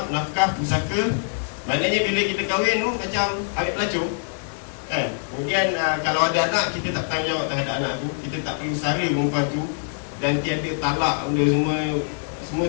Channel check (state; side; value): silent; right; digital silence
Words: nafkah, pusaka. Maknanya bila kita kahwin tu macam ambil pelacur kan. Kemudian kalau ada anak, kita tak tanggungjawab terhadap anak tu, kita tak perlu sara perempuan tu, dan tiada talak benda